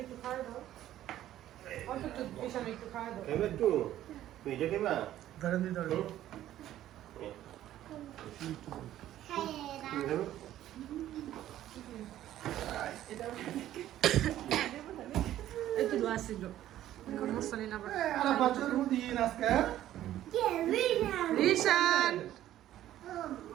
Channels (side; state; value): left; quieter; 12.9 dB